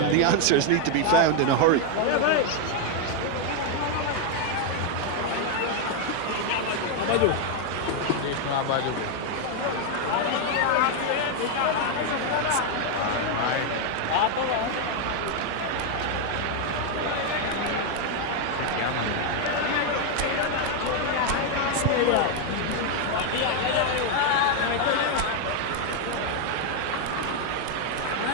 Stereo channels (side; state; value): both; different; correlation 0.01